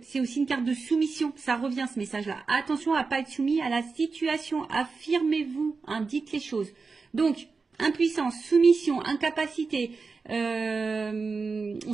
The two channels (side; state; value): left; quieter; 4.5 dB